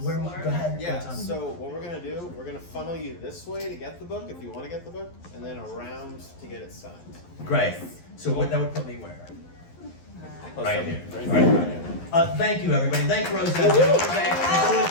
Go ahead. Yeah, Tom. so what we're gonna do, we're gonna funnel you this way to get the book if you wanna get the book, and then around to get it signed. Great. So that would put me where? Right here. Right Right here. here. Thank you, everybody. Thank Rosette. Thank you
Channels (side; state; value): right; late; 12 ms